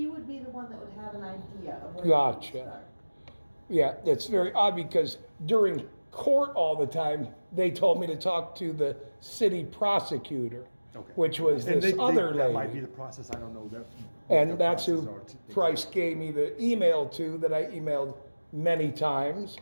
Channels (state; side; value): inverted; both; correlation -1.00